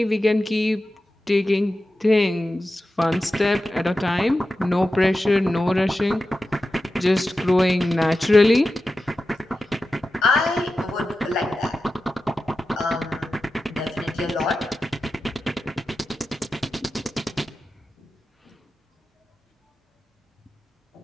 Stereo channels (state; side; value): normal; both; correlation 0.93